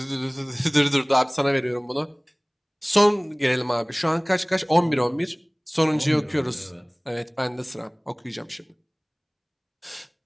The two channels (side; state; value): both; identical; correlation 1.00